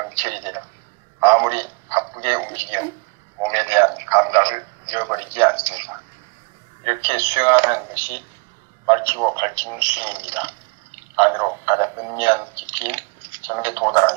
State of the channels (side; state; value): left; quieter; 31.9 dB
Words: 되어 아무리 바쁘게 움직여 몸에 대한 감각을 잃어버리지 않습니다. 이렇게 수행하는 것이 밝히고 밝히는 수행입니다. 안으로 가장 은밀한 깊이인 점에